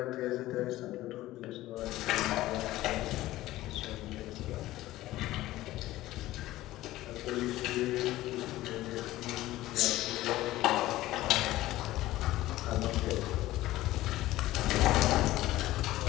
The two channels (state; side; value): quieter; right; 16.2 dB